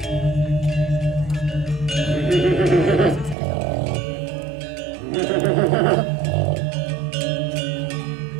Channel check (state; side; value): drops out; left; at 3.4 s